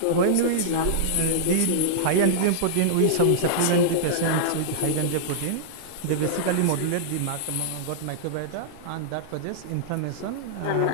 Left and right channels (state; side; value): different; both; correlation -0.02